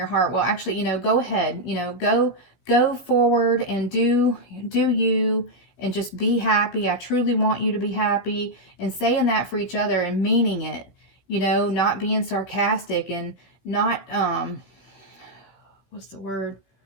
heart. Well, actually, go ahead, go forward and do you, and just be happy. I truly want you to be happy, and saying that for each other and meaning it, not being sarcastic and not, what's the word?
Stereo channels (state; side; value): late; right; 16 ms